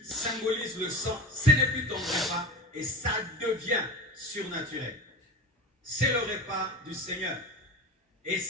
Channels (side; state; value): both; normal; correlation 0.30